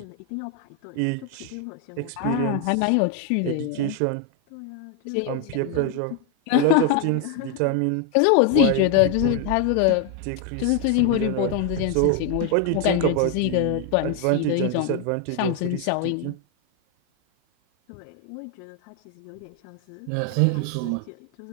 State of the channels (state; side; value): different; both; correlation 0.01